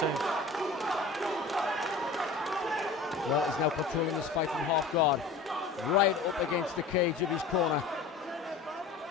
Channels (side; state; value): right; quieter; 4.3 dB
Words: Well, he's now controlling this fight from half guard, right up against the cage of his corner.